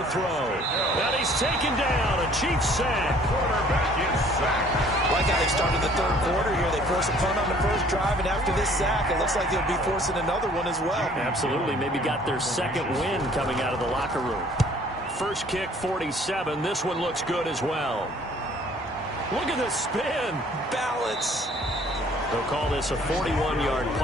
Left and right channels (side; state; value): both; normal; correlation 0.56